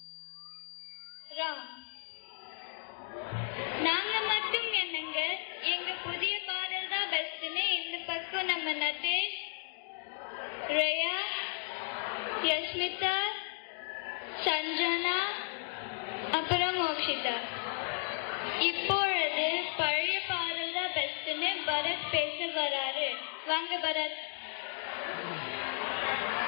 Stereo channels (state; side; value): silent; right; digital silence